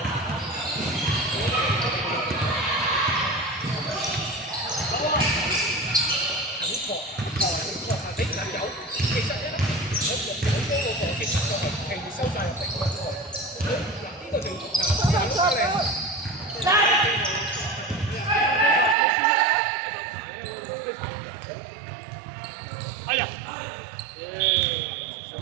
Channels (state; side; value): drops out; left; at 18.9 s